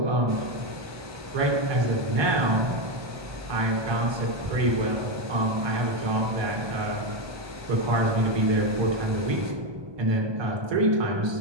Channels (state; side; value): late; left; 1.2 ms